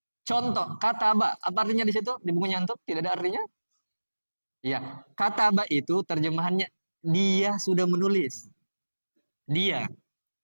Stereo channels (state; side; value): inverted; both; correlation -1.00